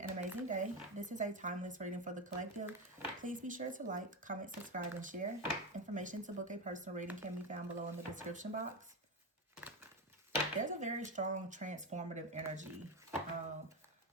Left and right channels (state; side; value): normal; both; correlation 0.15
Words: amazing day. This is a timeless reading for the collective. Please be sure to like, comment, subscribe, and share. Information to book a personal reading can be found below in the description box. There's a very strong transformative energy.